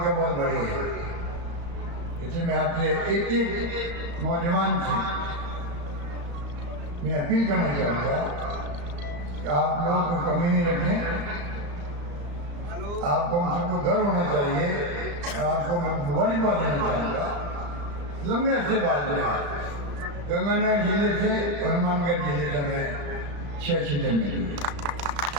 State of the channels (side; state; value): left; late; 35 ms